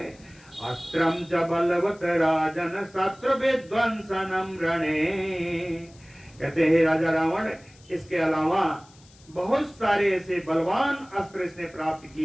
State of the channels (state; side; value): noise; left; hiss, 27 dB below the sound